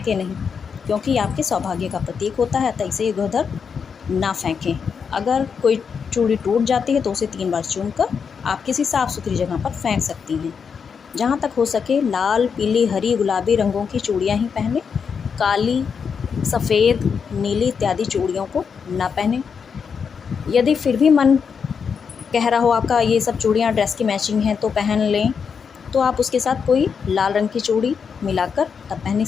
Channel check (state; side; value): quieter; right; 6.3 dB